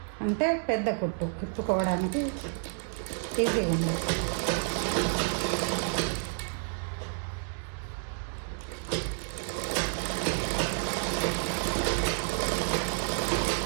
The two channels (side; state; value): left; silent; 58 dB below the other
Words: అంటే పెద్ద కుట్టు విప్పుకోవడానికి ఈజీగా ఉంది.